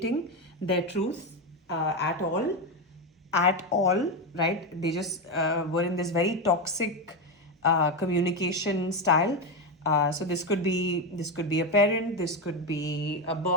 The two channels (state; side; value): normal; both; correlation 0.11